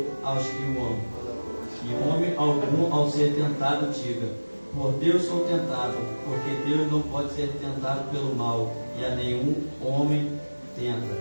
aos que o amam. E homem algum, ao ser tentado, diga: por Deus sou tentado, porque Deus não pode ser tentado pelo mal, e a nenhum homem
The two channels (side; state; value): both; inverted; correlation -1.00